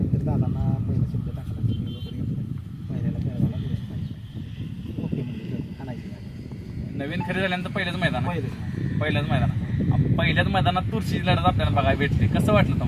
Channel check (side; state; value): both; identical; correlation 1.00